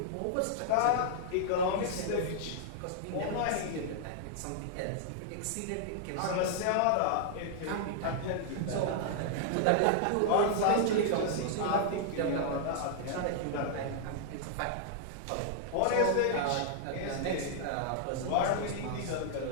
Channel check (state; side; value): different; both; correlation -0.01